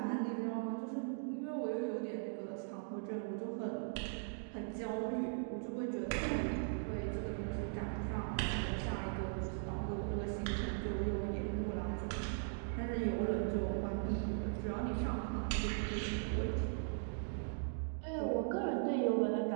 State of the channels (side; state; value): left; silent; digital silence